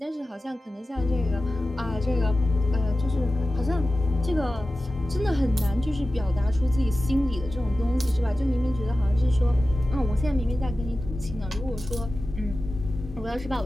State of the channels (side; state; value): both; normal; correlation 0.95